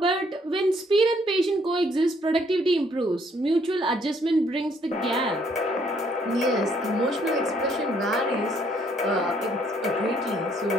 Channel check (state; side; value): normal; both; correlation 0.67